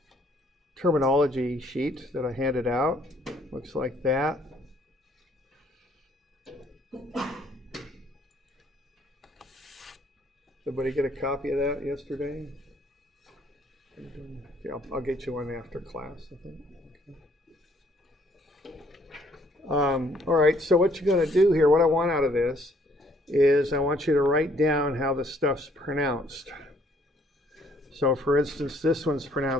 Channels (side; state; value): both; normal; correlation 0.64